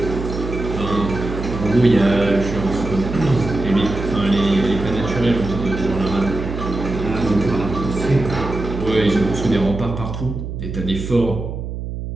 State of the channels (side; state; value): right; noise; hum, 6 dB below the sound